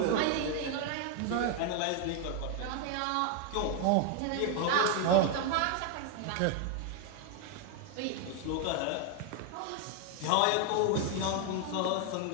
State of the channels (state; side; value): different; both; correlation 0.00